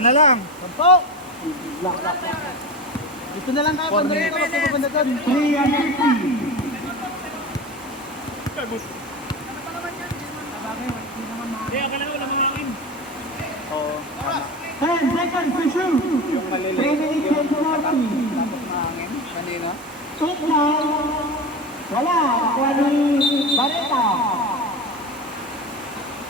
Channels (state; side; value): normal; both; correlation 0.26